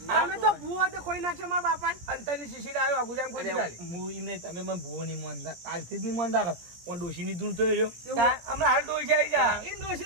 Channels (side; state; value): left; late; 17 ms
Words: તમે તો ભૂવો તે ખોઈ નાખશો મારા બાપાને અંતરની શીશી આવ્યો ગુજામ કોઈ ચાલે હું એમને તમે મને ભૂવો નહીં માનતા કાલથી જ નહીં માનતા પણ ડોશીની ધૂણ તો રહ્યો હમણાં હાલ ડોશી આવી જા એ